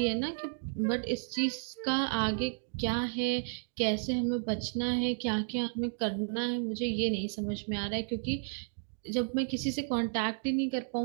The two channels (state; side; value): silent; left; digital silence